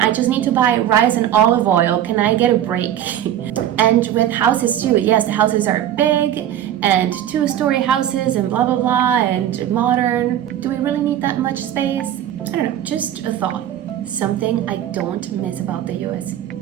just need to buy rice and olive oil. Can I get a break? And with houses too, yes, the houses are big and 2-story houses and blah, blah, blah, and modern. Do we really need that much space? I don't know, just a thought. Something I don't miss about the US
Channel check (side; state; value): left; quieter; 11.2 dB